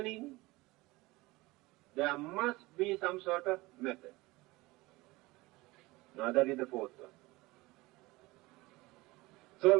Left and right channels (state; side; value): quieter; left; 21.2 dB